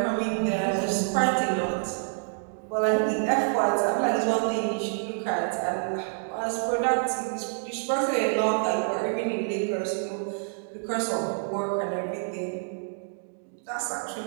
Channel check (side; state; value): left; silent; digital silence